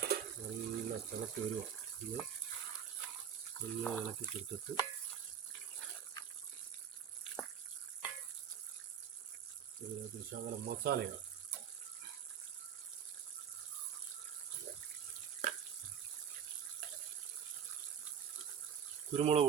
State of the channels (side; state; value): left; quieter; 8.2 dB